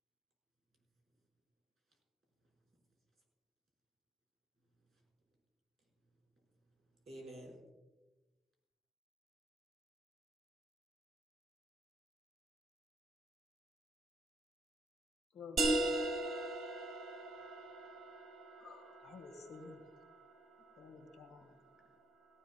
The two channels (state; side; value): normal; both; correlation 0.70